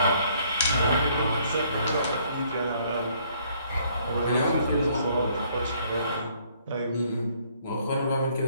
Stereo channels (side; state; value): both; inverted; correlation -0.64